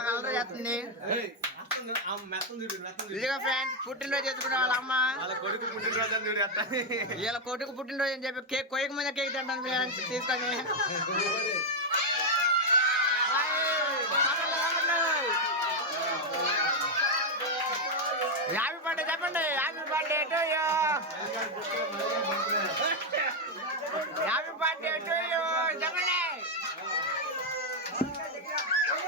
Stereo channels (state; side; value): normal; both; correlation 0.02